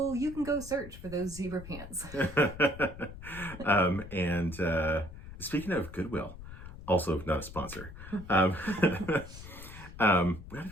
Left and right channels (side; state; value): left; noise; rumble, 13 dB below the sound